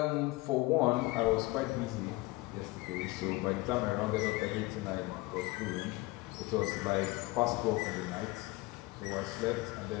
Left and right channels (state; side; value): quieter; right; 21.6 dB